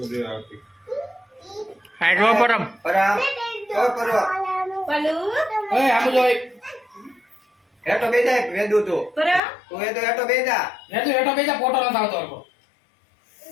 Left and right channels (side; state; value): right; drops out; at 9.4 s